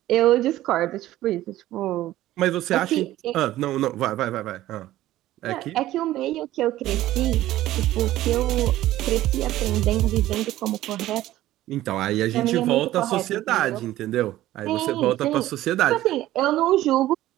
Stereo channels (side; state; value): left; quieter; 14.9 dB